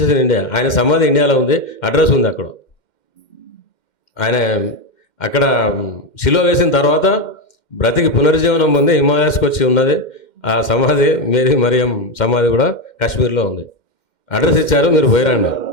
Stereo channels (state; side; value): late; right; 2.1 ms